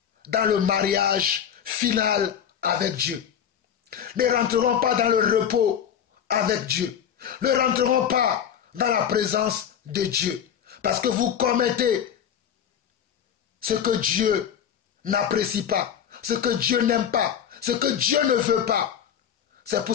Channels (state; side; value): quieter; right; 8.8 dB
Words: dans le mariage final avec Dieu. Ne rentreront pas dans le repos avec Dieu. Ne rentreront pas dans la présence de Dieu. Parce que vous commettez ce que Dieu n'apprécie pas, ce que Dieu n'aime pas, ce que Dieu ne veut pas. C'est pour